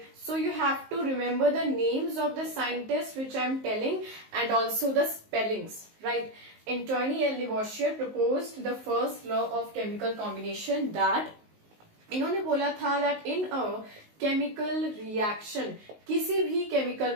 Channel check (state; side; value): late; left; 19 ms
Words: So you have to remember the names of the scientists which I am telling and also the spellings. Right. Antoine L. Lavoisier proposed the first law of chemical combination that इन्होंने बोला था that in a chemical reaction, किसी भी chemical